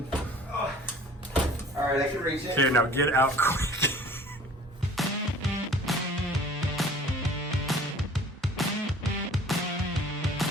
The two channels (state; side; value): normal; both; correlation 0.49